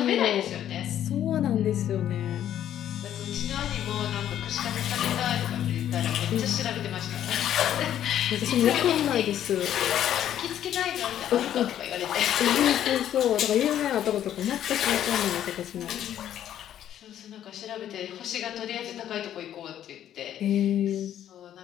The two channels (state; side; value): quieter; right; 10.9 dB